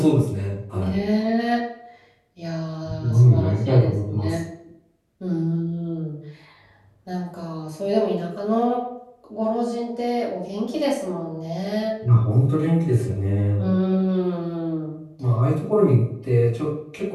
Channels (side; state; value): both; identical; correlation 1.00